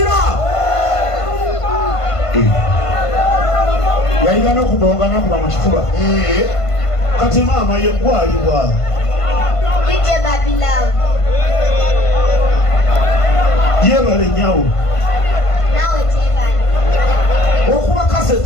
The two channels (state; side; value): late; right; 1.5 ms